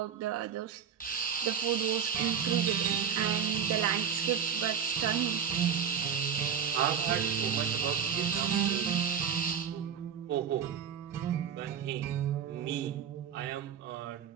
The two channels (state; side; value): quieter; left; 7.6 dB